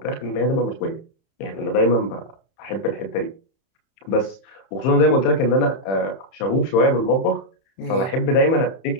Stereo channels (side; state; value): right; late; 31 ms